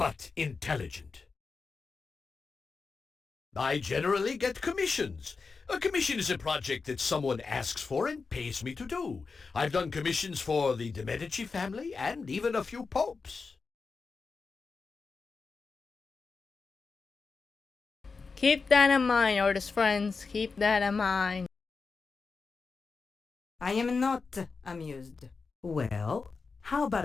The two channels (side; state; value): right; quieter; 4.6 dB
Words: intelligent. I generally get commissions. A commission is a project that someone asks for and pays me to do. I've done commissions for the de Medici family and even a few popes. Keep that in mind, artist friends. Keep that in mind. I am not amused. Well, how